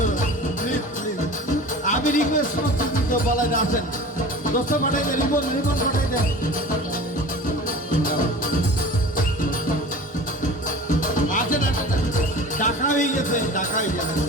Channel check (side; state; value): both; normal; correlation 0.38